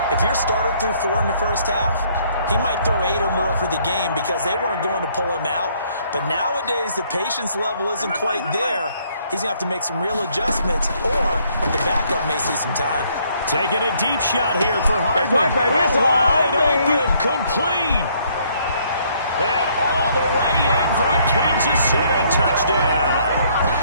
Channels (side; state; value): both; inverted; correlation -0.66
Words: if your starter threw 4 in the first half, he might throw 8 or more for the game because they weren't going to pull him out. But nowadays, the patience level isn't quite there. He's going to have to make some real adjustments, or the backup may see some time. Taking a deep shot here for Hardman. Wide open, complete. And all the way in for a Kansas City touchdown.